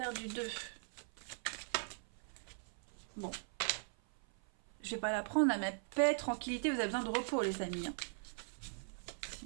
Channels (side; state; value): left; silent; 51 dB below the other